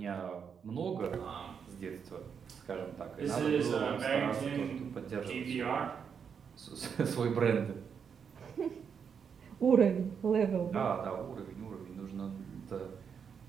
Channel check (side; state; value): left; quieter; 6.9 dB